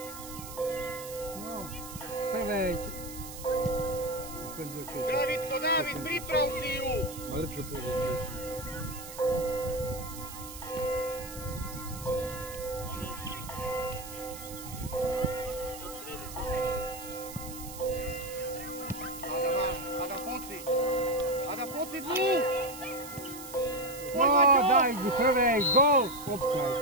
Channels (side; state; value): right; noise; hiss, 12 dB below the sound